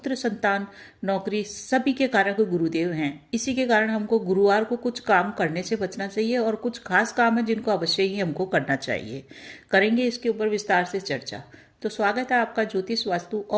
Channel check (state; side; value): identical; both; correlation 1.00